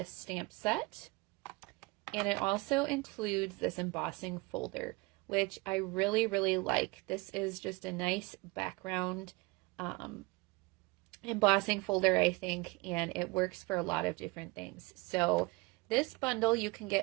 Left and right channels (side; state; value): left; quieter; 24.3 dB